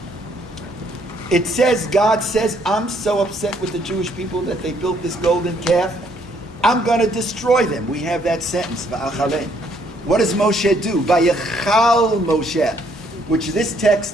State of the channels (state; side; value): normal; both; correlation 0.67